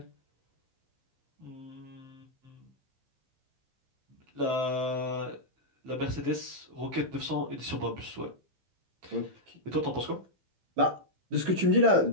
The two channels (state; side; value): late; left; 15 ms